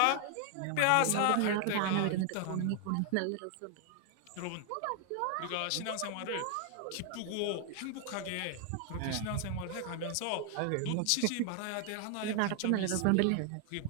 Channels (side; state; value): both; different; correlation 0.00